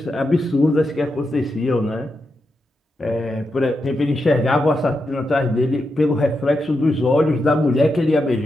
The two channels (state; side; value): normal; both; correlation 0.86